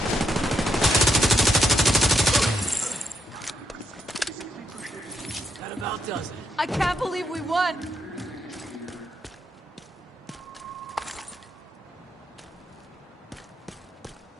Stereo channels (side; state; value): both; normal; correlation 0.78